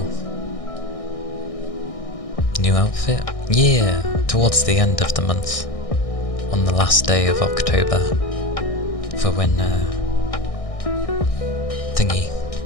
New outfit? Yeah, towards the end of the month, on the last day of October, for when thingy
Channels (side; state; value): right; late; 1.6 ms